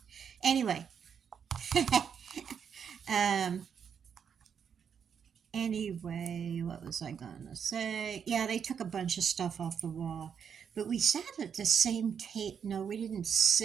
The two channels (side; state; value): left; quieter; 7.4 dB